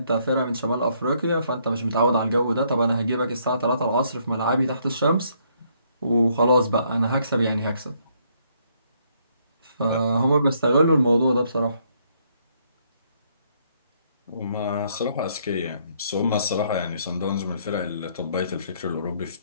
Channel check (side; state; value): both; inverted; correlation -0.70